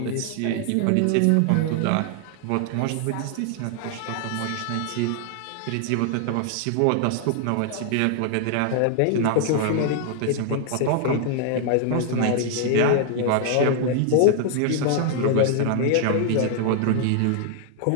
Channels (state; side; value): different; both; correlation 0.00